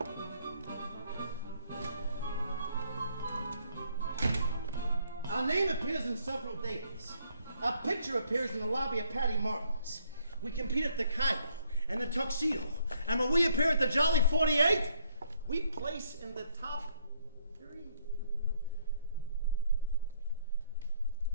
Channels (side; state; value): both; inverted; correlation -0.68